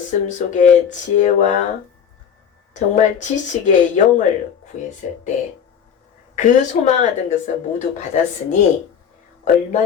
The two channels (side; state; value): right; quieter; 7.9 dB